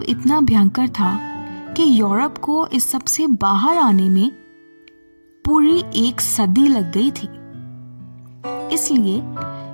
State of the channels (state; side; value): inverted; both; correlation -1.00